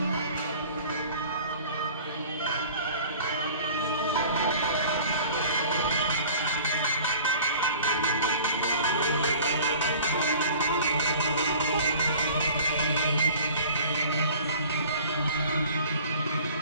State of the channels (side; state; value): both; inverted; correlation -0.45